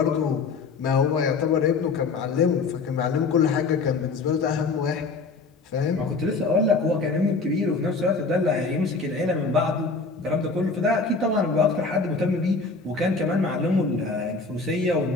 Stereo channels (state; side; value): quieter; right; 4.2 dB